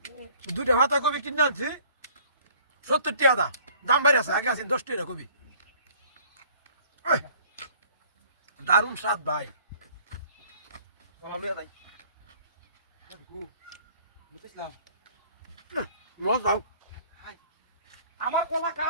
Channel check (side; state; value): both; inverted; correlation -0.54